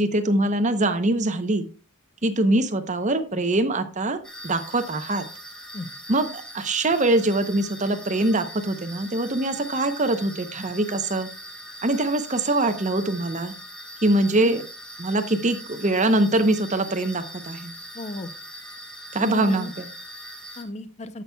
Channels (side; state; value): both; normal; correlation 0.42